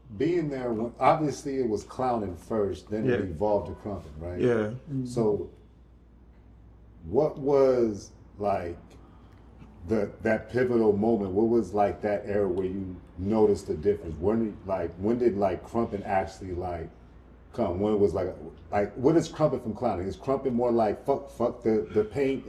being there, obviously it was clowning first, then it evolved to Krumping, right? Yeah. So, what was like that pivotal moment? What was like that era where you noticed the difference? When did Krumping actually like come? When it was like what is Krumping from clowning? Is Krumping more like fuck the paint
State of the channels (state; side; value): identical; both; correlation 1.00